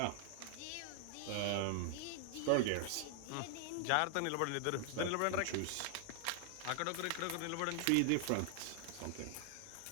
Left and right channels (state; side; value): different; both; correlation 0.00